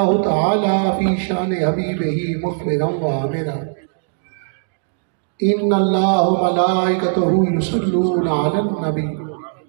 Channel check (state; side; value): silent; left; digital silence